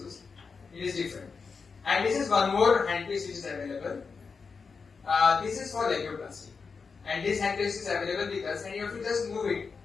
It is different. And this is one more handpiece which is available. This is for labioplasty. And this handpiece is available with us, and you have to just move it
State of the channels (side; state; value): right; quieter; 5.1 dB